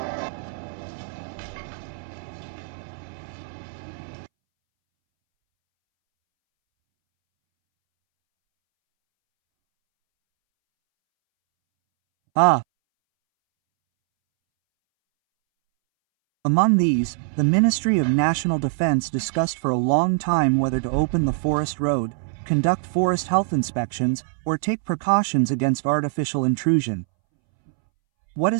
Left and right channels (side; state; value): left; silent; 63 dB below the other